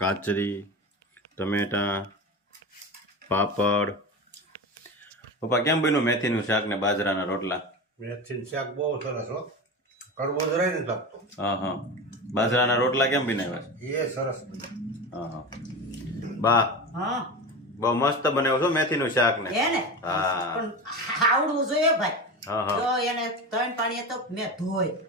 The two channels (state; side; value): normal; both; correlation 0.25